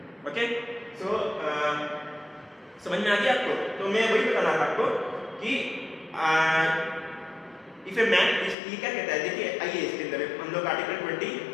Okay, so समझ में आ गया आपको? तो मैं वही बताना था आपको कि इफ ए मैन, ये क्या कहता है, देखिए आइए इसके अंदर हम लोग आर्टिकल 20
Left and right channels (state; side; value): drops out; right; at 8.6 s